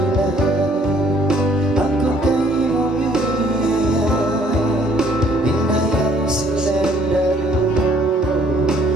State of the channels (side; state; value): both; normal; correlation 0.62